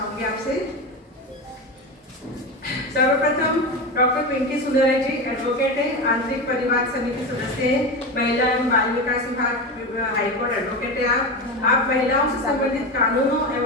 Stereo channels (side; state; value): both; normal; correlation 0.21